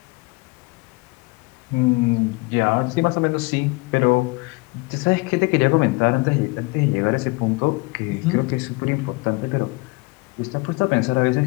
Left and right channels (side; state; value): right; quieter; 26.3 dB